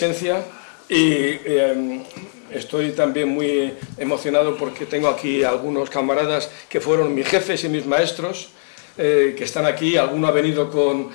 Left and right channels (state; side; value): silent; right; digital silence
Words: Y estoy también muy emocionado porque tengo aquí algunos camaradas que fueron mis jefes y mis maestros, que están aquí. Alguno ha venido con,